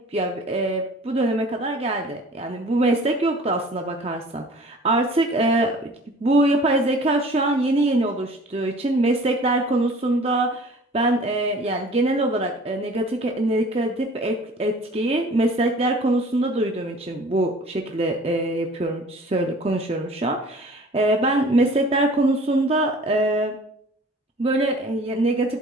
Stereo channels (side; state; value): both; normal; correlation 0.47